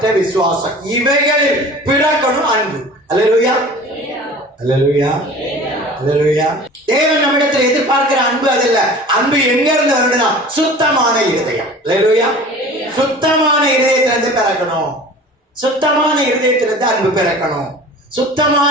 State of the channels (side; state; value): both; normal; correlation 0.41